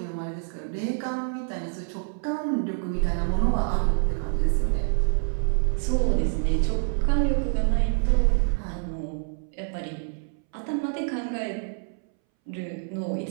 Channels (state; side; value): silent; left; 61 dB below the other